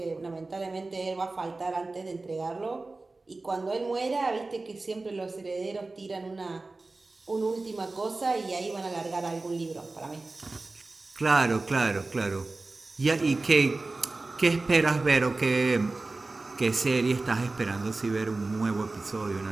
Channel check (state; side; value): quieter; left; 3.4 dB